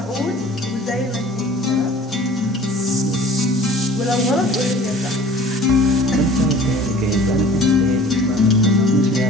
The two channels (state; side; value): normal; both; correlation 0.47